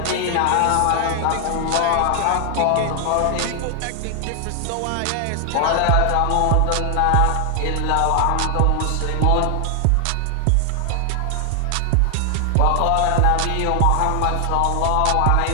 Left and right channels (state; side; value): different; both; correlation 0.00